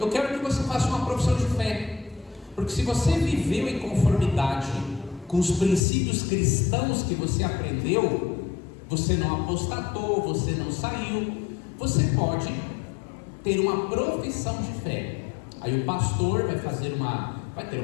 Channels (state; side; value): drops out; right; at 5.8 s